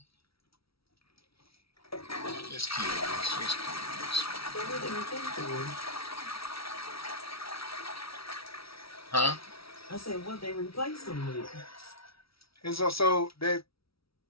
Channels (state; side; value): late; right; 0.75 ms